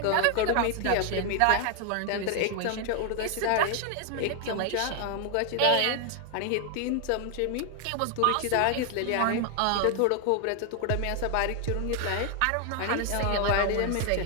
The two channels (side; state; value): both; different; correlation 0.00